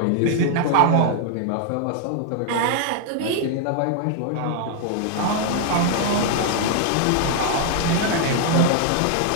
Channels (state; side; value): different; both; correlation 0.00